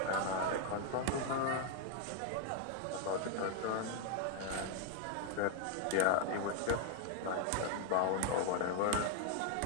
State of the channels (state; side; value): different; both; correlation 0.01